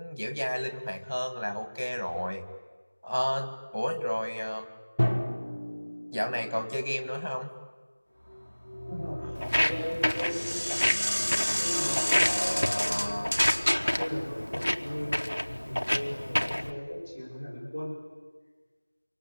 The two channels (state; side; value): inverted; both; correlation -1.00